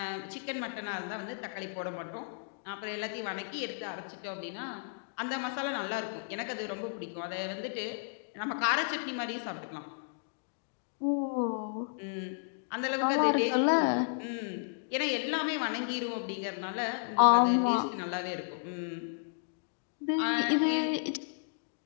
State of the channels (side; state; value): right; silent; digital silence